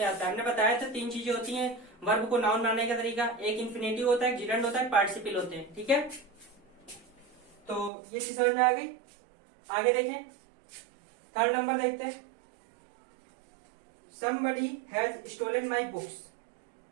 आता है। हमने बताया था 3 चीजें होती हैं वर्ब को नाउन बनाने का तरीका। एक इन्फिनेटिव होता है, जीरेंट होता है, पार्टिसिपल होते हैं। ठीक है, तो ये चीज समझ में आ गई। आगे देखें, थर्ड नंबर देखते हैं। somebody has stolen my books।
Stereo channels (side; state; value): left; drops out; at 7.9 s